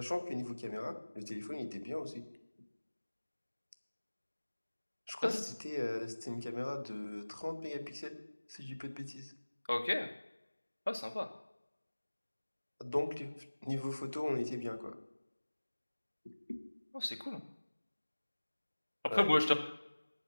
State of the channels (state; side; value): inverted; both; correlation -1.00